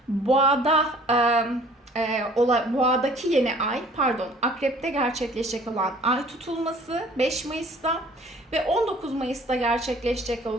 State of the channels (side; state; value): both; normal; correlation 0.53